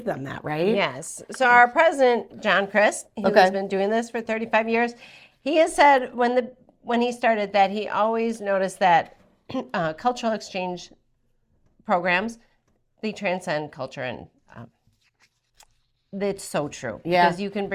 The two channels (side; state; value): both; identical; correlation 1.00